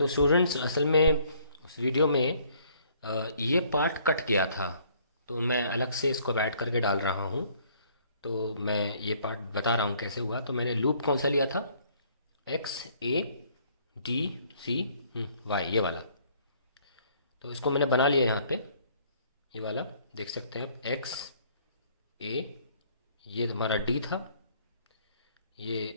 स्टूडेंट्स, असल में उस वीडियो में ये पार्ट कट गया था, तो मैं अलग से इसको ऐड करके डाल रहा हूँ। तो मैं ये पार्ट बता रहा हूँ कैसे हुआ। तो मैंने लूप कौन सा लिया था, XADC Y, ये वाला। तो इसको मैंने बना लिया यहाँ पे, ये वाला देख सकते हैं आप, XA, ये हमारा D था,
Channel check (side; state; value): both; inverted; correlation -0.61